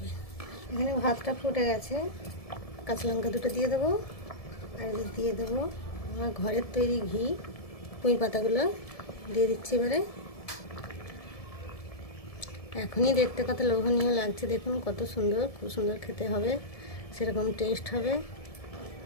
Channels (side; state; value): right; late; 1.7 ms